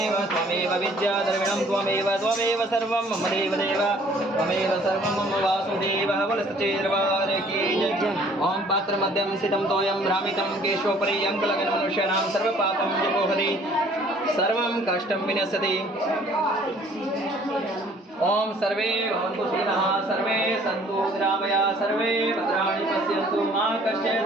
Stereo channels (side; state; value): both; normal; correlation 0.57